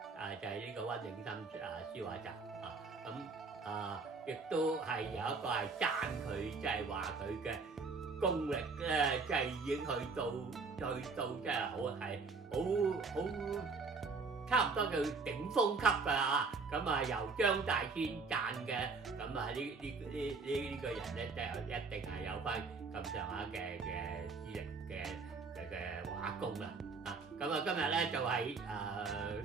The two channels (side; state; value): left; quieter; 4.4 dB